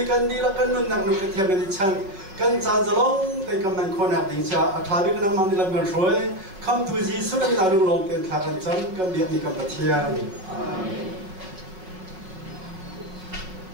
dilakan nun nak nukat yang ngicang kan zanzalong tay kaman konak dingcha athabi kan mang dilam kan shoy kam tuji sudah minalung long ten thakan chan kan biak ni kam patian amin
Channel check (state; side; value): late; left; 5.3 ms